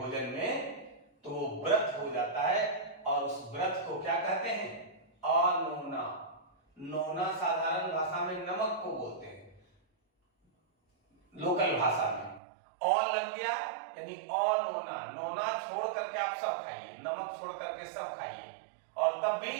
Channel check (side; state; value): left; drops out; at 12.4 s